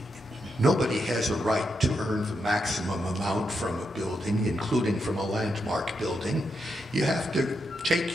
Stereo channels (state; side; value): normal; both; correlation 0.83